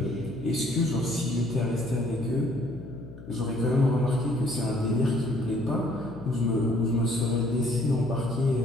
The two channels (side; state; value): left; noise; hum, 16 dB below the sound